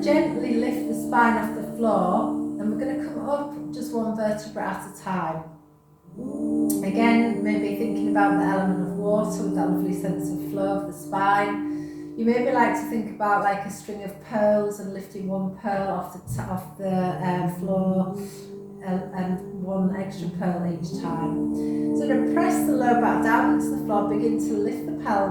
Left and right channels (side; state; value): both; identical; correlation 1.00